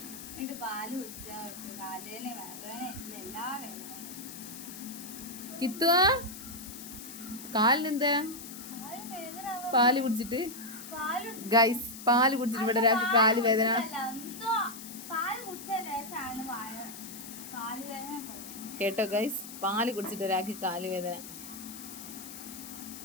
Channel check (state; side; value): noise; left; hiss, 12 dB below the sound